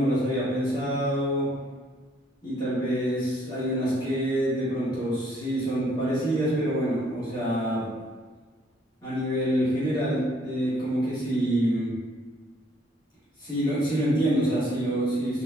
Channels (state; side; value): normal; both; correlation 0.65